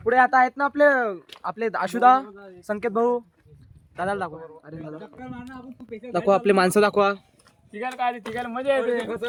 पुढे आता आहेत ना आपले आपले आशुदा, संकेत भाऊ. दादाला दाखवा. अरे दादा दाखवा, आपले माणसं दाखवा. मजा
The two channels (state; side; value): identical; both; correlation 1.00